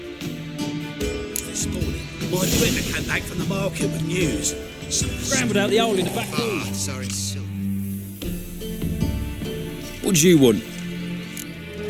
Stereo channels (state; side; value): identical; both; correlation 1.00